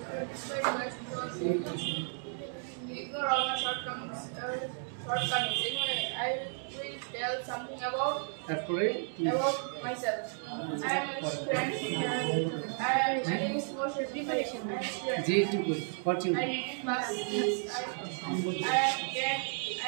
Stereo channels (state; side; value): silent; left; 56 dB below the other